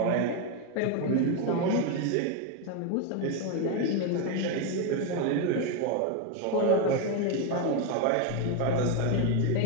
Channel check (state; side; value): different; both; correlation 0.02